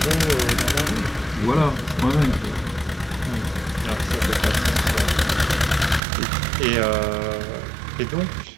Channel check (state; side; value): drops out; left; at 6.0 s